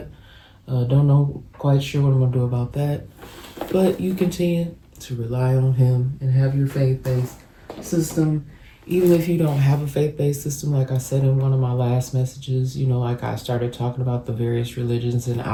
Don't know, quite sure what I'm going to do about that. But you continue to rely on Him and have your faith-based system. Even if you don't have a faith-based system, like I said in one of my last messages, I started talking about the various religions, and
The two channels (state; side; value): identical; both; correlation 1.00